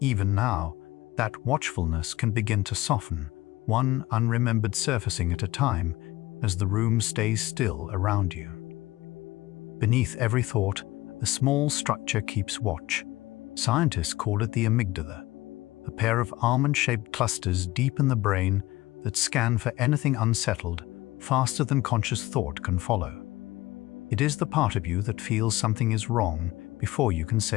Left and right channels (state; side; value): quieter; right; 18.5 dB